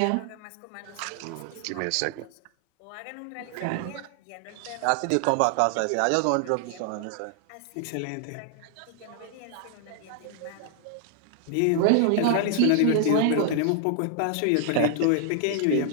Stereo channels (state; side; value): different; both; correlation 0.00